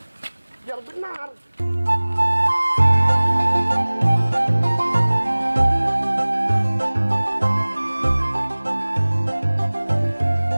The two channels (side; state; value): both; inverted; correlation -1.00